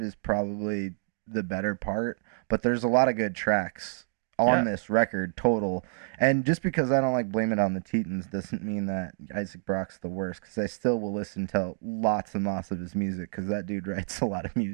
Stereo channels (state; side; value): silent; left; digital silence